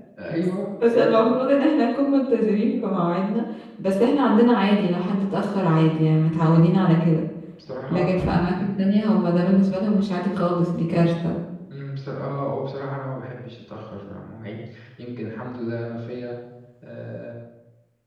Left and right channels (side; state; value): both; identical; correlation 1.00